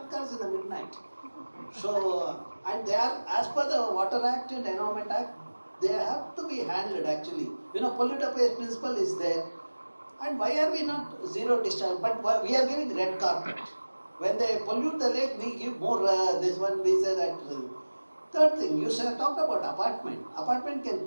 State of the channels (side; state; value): both; inverted; correlation -1.00